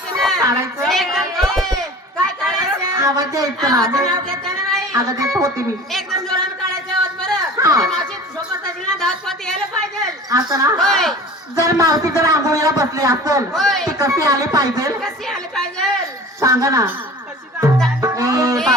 ना. काढायचं? काय काढायचं? आवाज द्यायचं ना आवाज नाव घेतं ना बाई. अगं देत होती मी एकदम जोरानं काढायचं आवाज बरं. हा. त्या मावशी सोबत असेल ना धावत पळत यायला पाहिजे. असं ना होय. जर मावशी जर आंघोळीला बसली असेल होय. ती कशी आली पाहिजे कशी आली पाहिजे? सांगा ना कशी जाऊ? ए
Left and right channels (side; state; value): both; normal; correlation 0.40